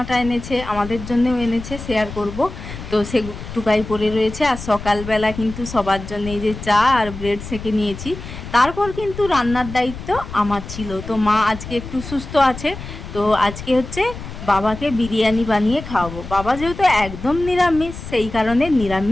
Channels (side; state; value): left; noise; rumble, 11 dB below the sound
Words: এনেছে, আমাদের জন্যও এনেছে, শেয়ার করব। তো সে টুকাই পরে রয়েছে। আর সকালবেলা কিন্তু সবার জন্য এই যে চা আর ব্রেড সেঁকে নিয়েছি। তারপর কিন্তু রান্নার দায়িত্ব আমার ছিল। তো মা আজকে একটু সুস্থ আছে, তো আজকে হচ্ছে বাবাকে বিরিয়ানি বানিয়ে খাওয়াবো। বাবা যেহেতু একদম নিরামিষ, সেই কারণে